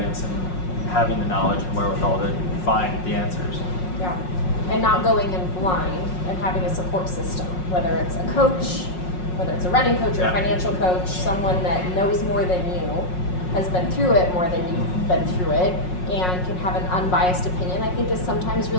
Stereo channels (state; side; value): late; right; 5.5 ms